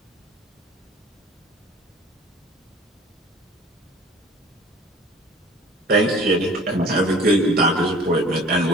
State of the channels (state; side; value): normal; both; correlation 0.47